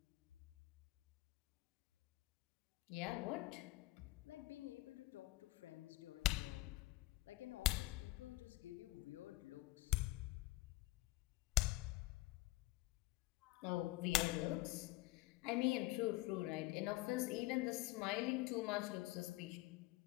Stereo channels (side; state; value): right; quieter; 19.0 dB